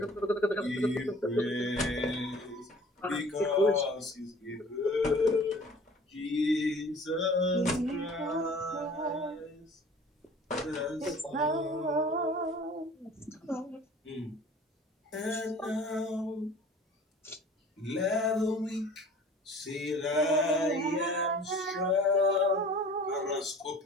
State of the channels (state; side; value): normal; both; correlation 0.47